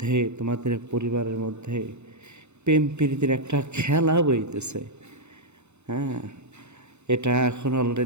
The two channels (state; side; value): late; left; 0.82 ms